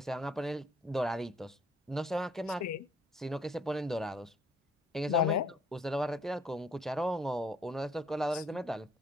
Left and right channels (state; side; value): normal; both; correlation 0.62